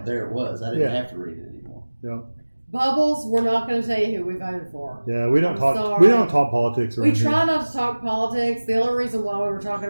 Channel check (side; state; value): both; inverted; correlation -1.00